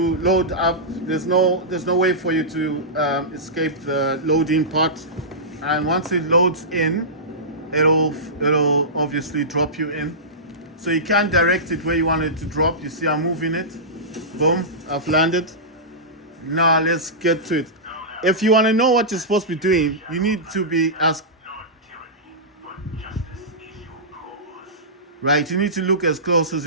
load up. There's no way for you to escape the loading part. And once it loads in, it'll obviously drop you in. So you can direct it where you want it to drop. You see I'm moving it. Boom, I've landed. Now let's get to it. If you want to know what you're supposed to be doing, you need to be as right, you need to look as close as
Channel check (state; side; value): normal; both; correlation -0.17